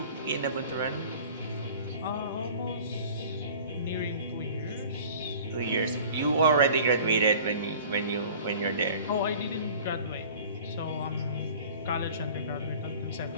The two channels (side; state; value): both; inverted; correlation -0.45